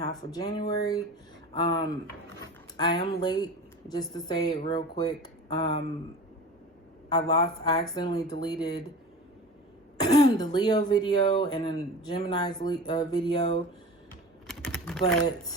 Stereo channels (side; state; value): both; normal; correlation 0.34